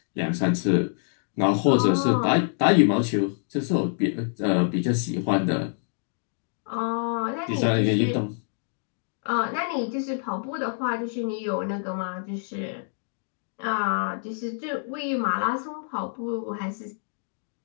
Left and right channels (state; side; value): silent; right; digital silence